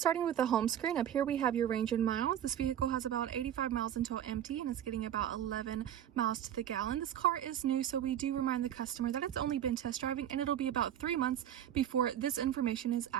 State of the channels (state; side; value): quieter; left; 10.5 dB